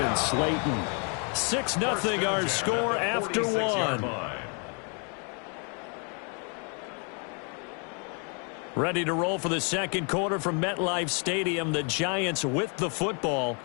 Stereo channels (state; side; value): quieter; right; 37.7 dB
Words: Slayton. 6-0 our score after one. Ready to roll for the second quarter from MetLife Stadium. The Giants with the football